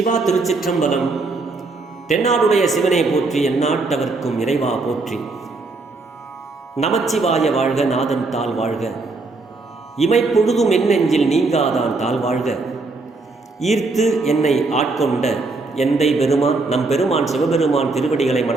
திருச்சிற்றம்பலம். தென்னாடுடைய சிவனை போற்றி, எந்நாட்டவர்க்கும் இறைவா போற்றி. நமச்சிவாய வாழ்க, நாதன் தாள் வாழ்க. இமைப்பொழுதும் என் நெஞ்சில் நீங்காதான் தாள் வாழ்க. ஈர்த்து என்னை ஆட்கொண்ட எந்தை பெருமான் நம் பெருமான் சிவபெருமான் திருவடிகளை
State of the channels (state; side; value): quieter; left; 3.6 dB